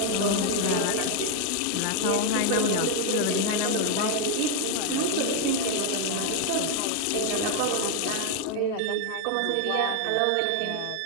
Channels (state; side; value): different; both; correlation 0.00